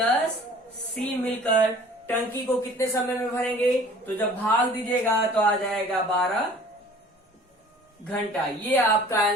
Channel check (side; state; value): both; normal; correlation 0.49